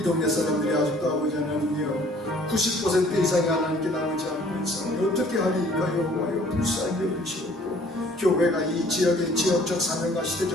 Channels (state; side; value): normal; both; correlation 0.56